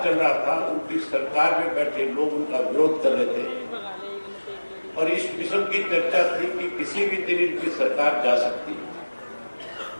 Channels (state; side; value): inverted; both; correlation -1.00